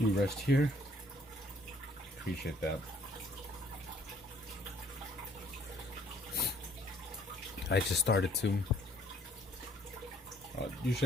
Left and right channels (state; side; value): normal; both; correlation 0.61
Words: rest here? Appreciate that. I just started to.